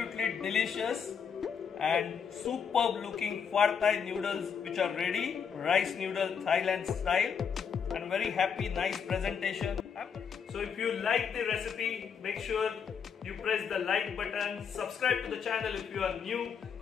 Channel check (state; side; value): quieter; right; 6.8 dB